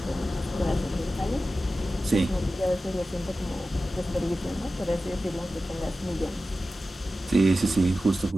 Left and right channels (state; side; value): normal; both; correlation 0.94